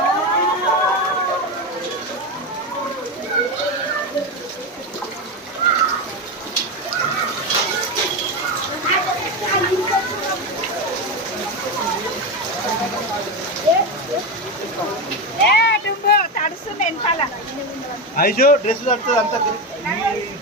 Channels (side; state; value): both; normal; correlation 0.15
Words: ఐజో డ్రెస్ తడుతుంది అంతా